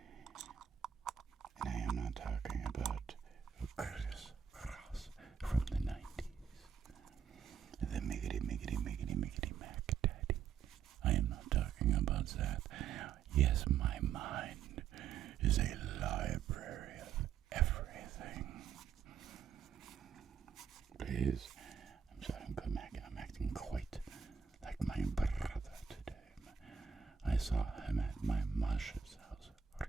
And I am not talking about a criss-cross from the 90s. The miggity mac daddy. I am not talking about that. Yes, my mind is a library of everything. Please, I'm sorry, I'm acting quite like my brother today. I saw him at my Masha's house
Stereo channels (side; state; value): left; quieter; 7.5 dB